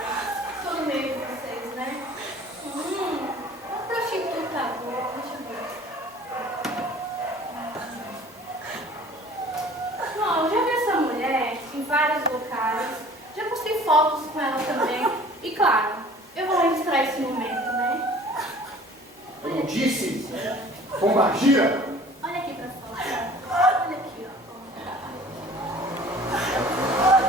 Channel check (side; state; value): both; normal; correlation 0.48